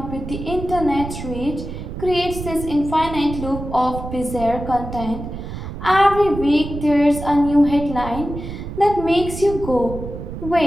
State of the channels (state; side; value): noise; right; rumble, 8 dB below the sound